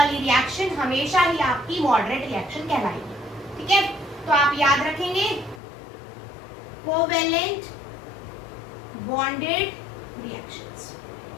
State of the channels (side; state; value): right; drops out; at 5.6 s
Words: रिएक्शन हमेशा ही आपकी मॉडरेट रिएक्शन कहलाएगी। ठीक है, तो आप याद रखेंगे कोवेलेंट बॉन्डेड रिएक्शंस,